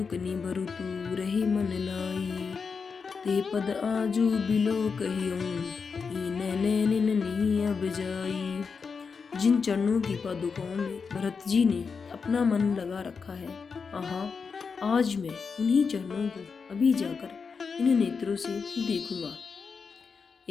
निभरु तू, रही मन लाई। ते पद आजू बिलो कहियूं, नैन नहीं अब जाई। जिन चरणों की पादुकाओं में भरत जी ने अपना मन लगा रखा है, आहा, आज मैं उन्हीं चरणों को अभी जाकर इन नेत्रों से देखूंगा।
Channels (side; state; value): right; quieter; 5.4 dB